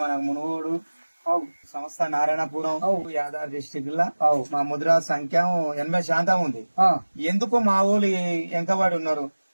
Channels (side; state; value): both; inverted; correlation -1.00